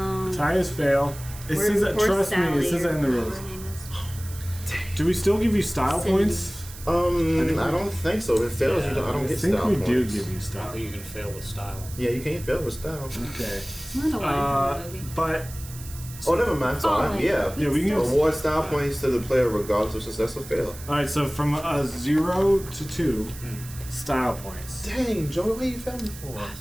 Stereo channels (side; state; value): right; noise; hiss, 15 dB below the sound